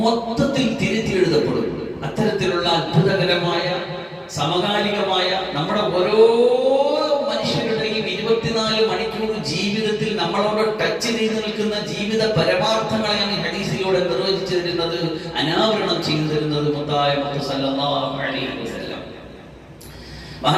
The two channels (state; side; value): identical; both; correlation 1.00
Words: തിരുത്തി എഴുതപ്പെടും. അത്തരത്തിലുള്ള അത്ഭുതകരമായ സമകാലികമായ നമ്മുടെ ഓരോ മനുഷ്യരുടെയും 24 മണിക്കൂർ ജീവിതത്തിൽ നമ്മളോട് ടച്ച് ചെയ്ത് നിൽക്കുന്ന ജീവിത പരമാർത്ഥങ്ങളെയാണ് ഹദീസിലൂടെ നിർവചിച്ചു തരുന്നത്, അനാവരണം ചെയ്തു തരുന്നത് മുത്തായ മുഹമ്മദ് സല്ലല്ലാഹു അലൈഹി വസല്ലം.